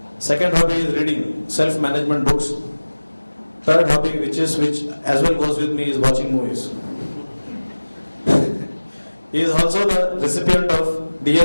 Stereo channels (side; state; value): both; inverted; correlation -1.00